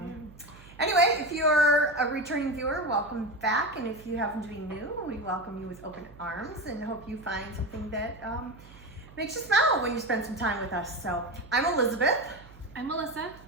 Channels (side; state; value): right; noise; hum, 21 dB below the sound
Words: anyway, if you're a returning viewer, welcome back. And if you happen to be new, we welcome you with open arms and hope you find something that makes you smile when you spend some time with us. So I'm Elizabeth. I'm Melissa.